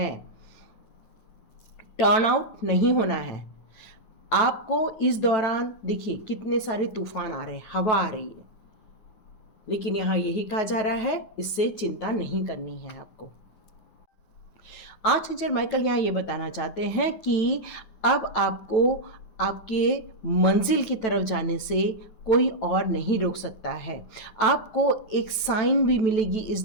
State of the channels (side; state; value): right; late; 9.1 ms